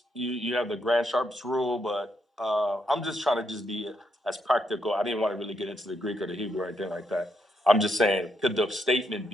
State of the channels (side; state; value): both; normal; correlation 0.78